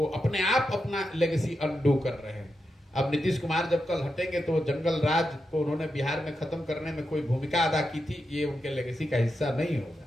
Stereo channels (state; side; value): normal; both; correlation 0.87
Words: अपने आप अपना लेगेसी अनडू कर रहे हैं। अब नीतीश कुमार जब कल हटेंगे तो जंगल राज को उन्होंने बिहार में खत्म करने में कोई भूमिका अदा की थी, ये उनके लेगेसी का हिस्सा नहीं होगा।